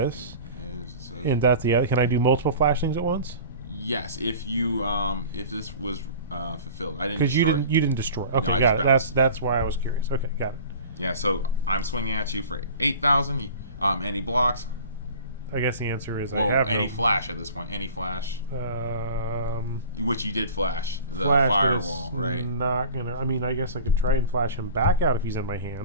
is. So and that's the other, can I do multiple flash things at once? yes, if you, if this was fulfilled, I didn't. Because you destroy it. didn't destroy. Okay, I got just it. bounced. That's why I was curious. Okay, got it. Yeah, so I'm swinging at you for 8,000. Any blocks? I guess the answer is Well, I have any no, flash at this point. Any flash, which you did flash the flash firewall, was right? Not gonna. I mean, I guess I could try and flash him back out if he's in my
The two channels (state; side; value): inverted; both; correlation -0.41